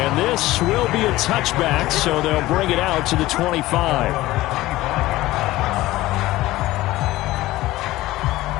this will be a touchback, so they'll bring it out to the 25.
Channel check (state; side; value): quieter; right; 17.3 dB